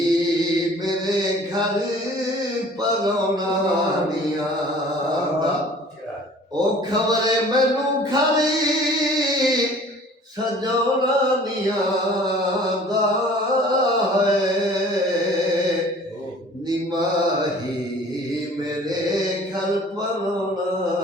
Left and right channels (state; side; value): normal; both; correlation 0.49